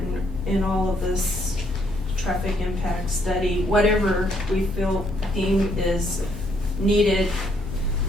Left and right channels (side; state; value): both; normal; correlation 0.71